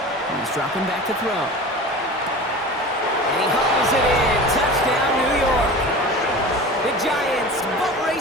He's dropping back to throw. And he hauls it in. Touchdown, New York. The Giants boat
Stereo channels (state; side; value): normal; both; correlation 0.35